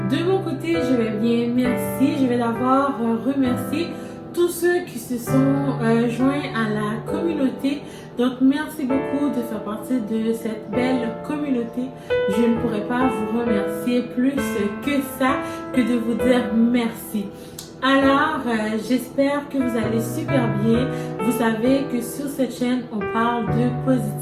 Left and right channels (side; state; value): both; identical; correlation 1.00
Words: De mon côté, je vais bien, merci. Je vais d'abord remercier tous ceux qui se sont joints à la communauté. Donc, merci beaucoup de faire partie de cette belle communauté. Je ne pourrais pas vous remercier plus que ça, que de vous dire merci. Alors, j'espère que vous allez super bien. Vous savez que sur cette chaîne, on parle de